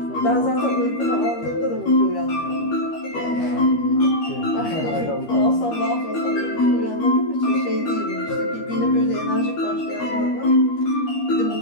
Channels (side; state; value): right; late; 13 ms